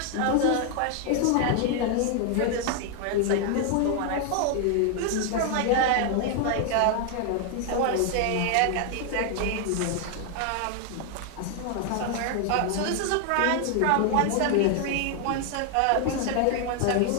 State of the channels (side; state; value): both; different; correlation 0.00